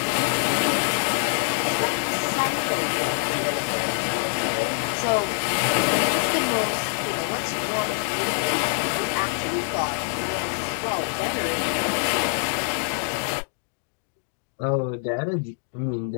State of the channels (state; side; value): silent; right; digital silence